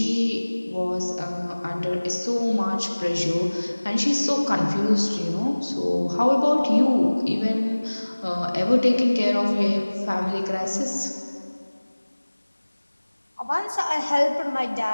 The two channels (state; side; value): inverted; both; correlation -1.00